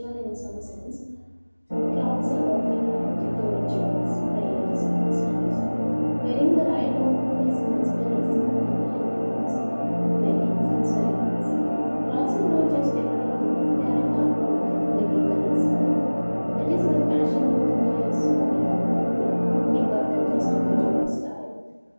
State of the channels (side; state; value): both; inverted; correlation -1.00